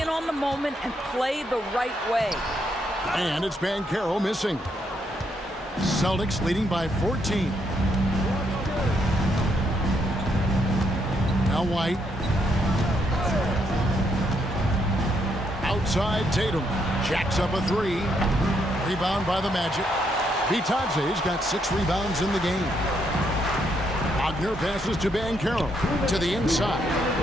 on the moment and play the right way. And it's Banchero missing. Celtics leading by 14. Now White. Outside Tatum. Jacks up a 3. Rebound by the Magic. Vitadze's got 6 rebounds in the game. Wagner passes to Banchero. To the inside.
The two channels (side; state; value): both; normal; correlation 0.75